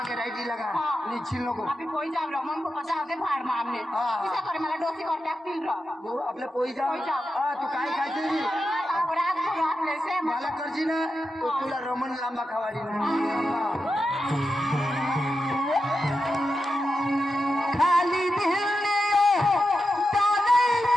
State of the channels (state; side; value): normal; both; correlation 0.89